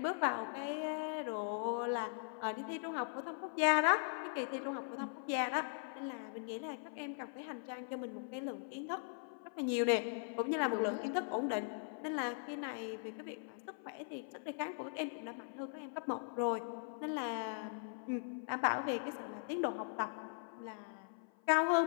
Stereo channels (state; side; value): silent; right; 51 dB below the other